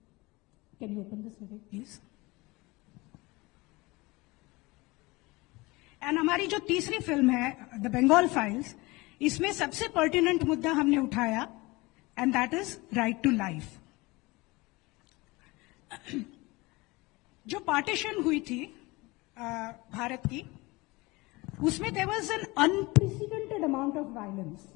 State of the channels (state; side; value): quieter; right; 23.1 dB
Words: Can you open this, Vivek, please? And हमारी जो तीसरी फिल्म है, द बंगाल फाइल्स, इसमें सबसे पर्टिनेंट मुद्दा हमने उठाया, and that is right to life. जो पार्टीशन हुई थी भारत की, उसमें there was an unprecedented amount of violence.